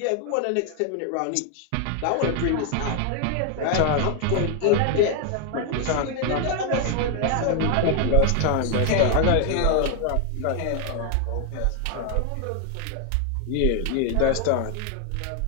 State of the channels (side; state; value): both; different; correlation 0.00